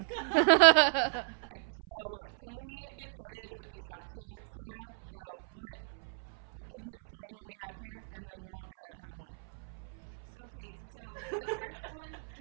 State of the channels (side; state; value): left; silent; 55 dB below the other